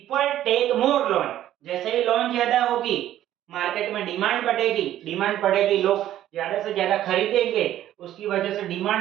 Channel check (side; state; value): left; quieter; 12.5 dB